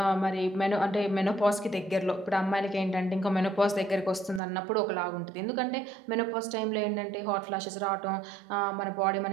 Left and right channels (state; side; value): drops out; left; at 4.4 s